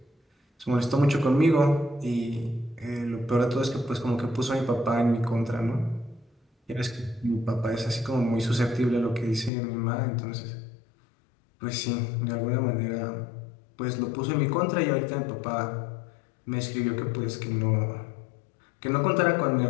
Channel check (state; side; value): drops out; right; at 9.5 s